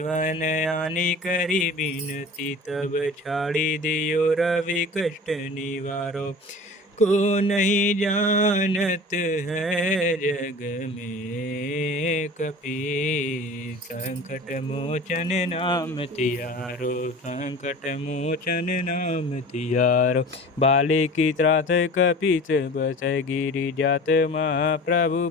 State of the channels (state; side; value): normal; both; correlation 0.39